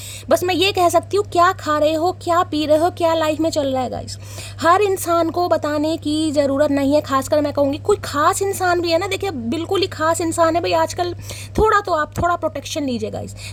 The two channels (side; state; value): both; identical; correlation 1.00